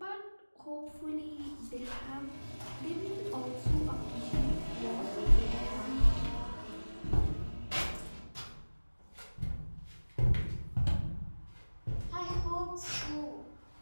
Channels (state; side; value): inverted; both; correlation -1.00